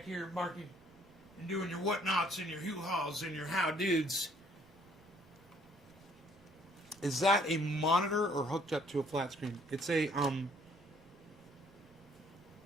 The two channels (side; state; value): right; noise; rumble, 28 dB below the sound